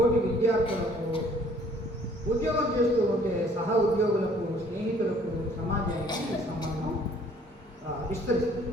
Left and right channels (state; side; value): normal; both; correlation 0.58